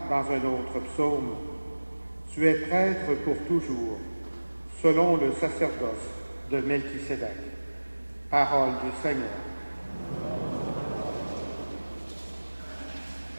dans un autre psaume « Tu es prêtre pour toujours, selon le sacerdoce de Melchisédek. » Parole du Seigneur.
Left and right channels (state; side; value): inverted; both; correlation -1.00